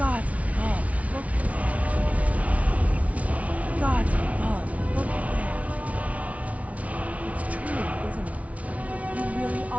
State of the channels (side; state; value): left; late; 0.067 ms